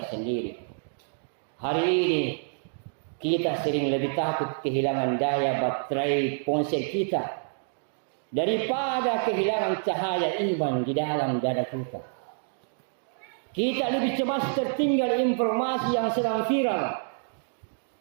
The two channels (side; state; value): left; silent; digital silence